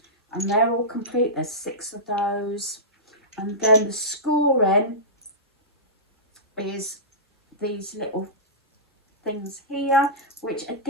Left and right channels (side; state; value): both; normal; correlation -0.18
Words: and they're all complete. There's 6 of those. And then the scoring is these little things here, which